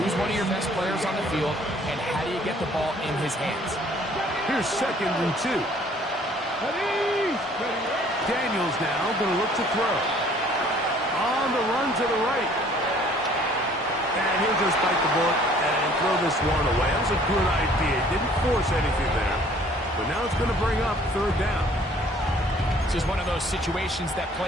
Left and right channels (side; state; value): both; normal; correlation 0.56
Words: one of your best players on the field, and how do you get the ball in his hands? Here's 2nd and 2. Daniels now going to look to throw. On the run to the right. And he'll just bite the bullet and throw this one away. That was a good idea. Didn't force anything there. But now it's going to bring up 3rd down. This is one of those situations that